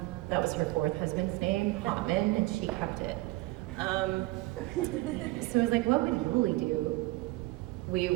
was her fourth husband's name, Hotman, and she kept it. So I was what would Yoli do? We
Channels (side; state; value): left; quieter; 20.8 dB